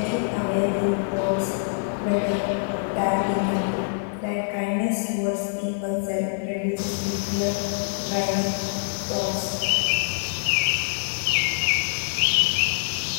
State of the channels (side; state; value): right; silent; digital silence